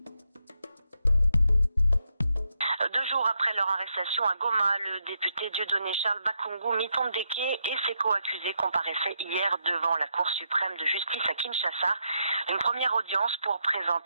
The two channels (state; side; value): inverted; both; correlation -0.81